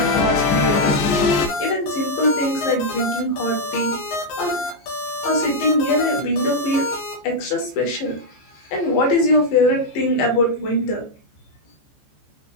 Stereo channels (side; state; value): right; late; 14 ms